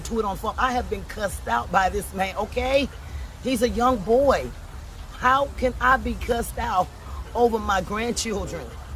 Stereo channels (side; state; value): both; identical; correlation 1.00